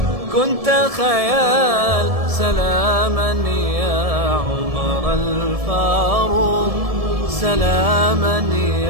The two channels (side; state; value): left; late; 1.7 ms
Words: كنت خيال. سلاما يا عمر الفاروق، سلاما